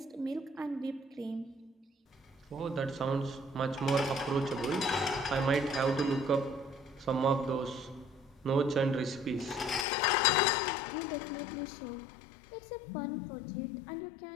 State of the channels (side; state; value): right; drops out; at 9.9 s